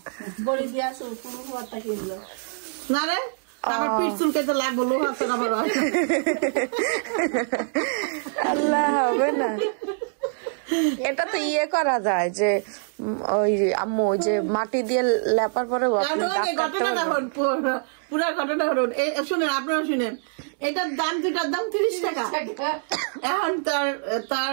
কিনলো না রে, আমার পিঠ চুলকাইতে লাগবো, লোহা তো আবার আল্লাহ হবে না। এটা তো ইয়ে করা যায় যে ওই আম্মু যে মাটি দিয়ে লেপার পরে পুরা ঘটনা হরুন। শুনেন, আপনারা শুনেন, এটার দাম, দুটার দাম 30 টাকা। এখন তার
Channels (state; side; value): silent; left; 62 dB below the other